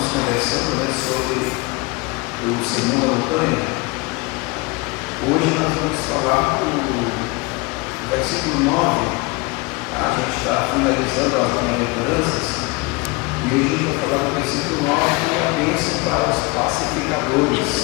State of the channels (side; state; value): right; quieter; 25.6 dB